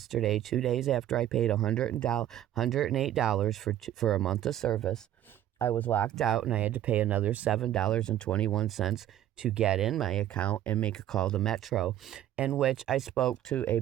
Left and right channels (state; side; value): quieter; left; 12.2 dB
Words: 2 days after I paid $108 for a month of service. I was locked out and I had to pay another $7.21 to get in my account and make a call to Metro, in which I spoke to a